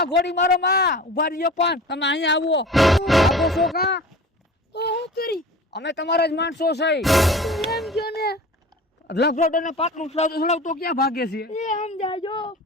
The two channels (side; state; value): both; normal; correlation 0.38